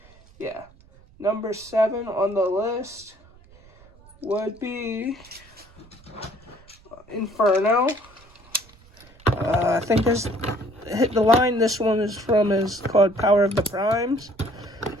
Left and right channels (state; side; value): noise; right; rumble, 26 dB below the sound